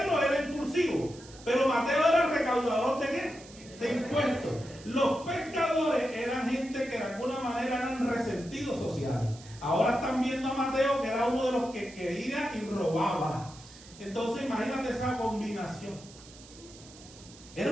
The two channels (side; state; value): right; noise; hiss, 20 dB below the sound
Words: era impulsivo, pero Mateo era el recaudador ¿de qué? De impuestos. Los pescadores eran gente que de alguna manera eran resentidos sociales. Ahora están viendo a Mateo, que era uno de los que quería y robaba. Entonces imagínate esa combinación. Era